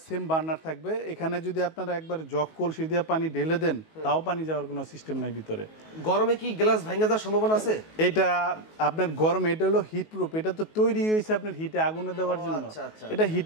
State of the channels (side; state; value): right; late; 19 ms